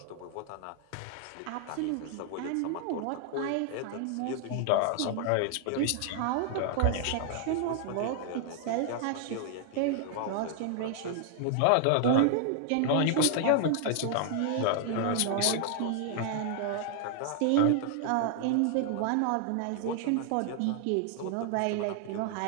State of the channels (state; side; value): different; both; correlation 0.00